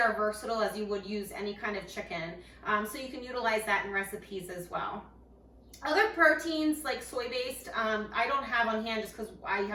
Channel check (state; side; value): identical; both; correlation 1.00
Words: versatile as you would use any kind of chicken. So you can utilize that in recipes as well. Other proteins like soy-based, I don't have on hand just because I